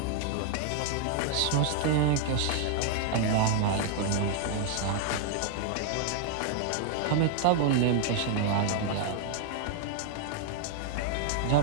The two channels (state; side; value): different; both; correlation 0.00